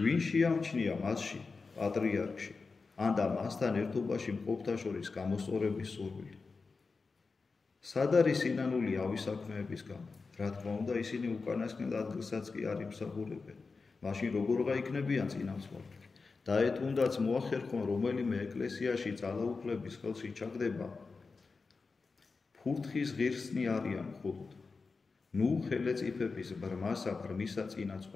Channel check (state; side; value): quieter; right; 4.4 dB